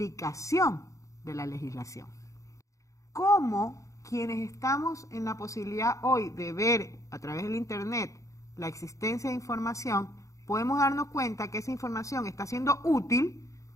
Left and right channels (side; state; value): right; late; 0.15 ms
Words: de la legislación? ¿Cómo quienes estamos en la posibilidad hoy de ver a través del Internet la existencia de información, podemos darnos cuenta que esa información está siendo útil